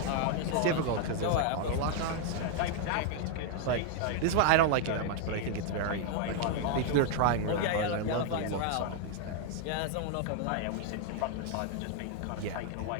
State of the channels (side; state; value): both; different; correlation 0.00